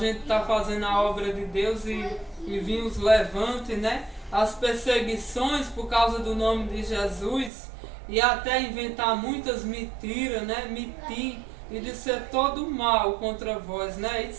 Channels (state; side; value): drops out; left; at 7.5 s